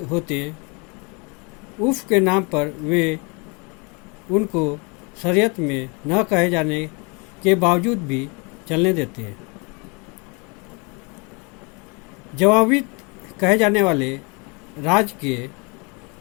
होते उफ के नाम पर वे उनको शरीयत में न कहे जाने के बावजूद भी चलने देते हैं। जवाबी कहे जाने वाले राज्य के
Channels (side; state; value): right; quieter; 31.4 dB